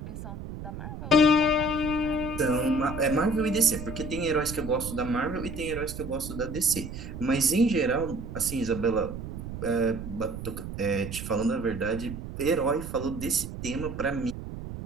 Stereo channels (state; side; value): noise; right; rumble, 9 dB below the sound